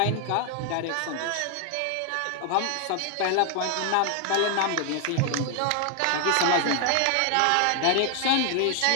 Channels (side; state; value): both; different; correlation 0.00